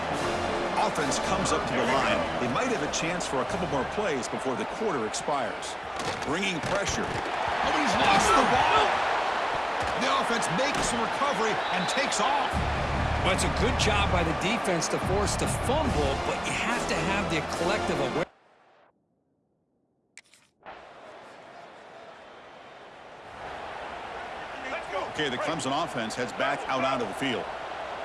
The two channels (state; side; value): identical; both; correlation 1.00